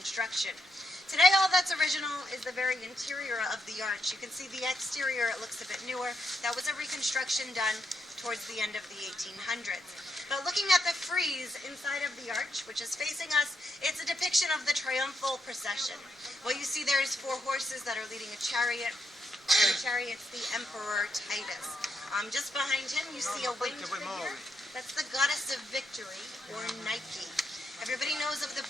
Today all that's original is the very interior of the arch. You can see the exterior, it looks a bit newer. That was a reconstruction done towards the end of the 1800s. But looking at the frieze inside of the arch, which is facing us, it's a depiction of the triumphal procession. What you see there is 4 horses that are leading a chariot. The chariot's the Emperor Titus. Just behind him, you see a winged figure. That's the goddess of victory, or Nike. Everybody knows of the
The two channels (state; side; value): normal; both; correlation 0.79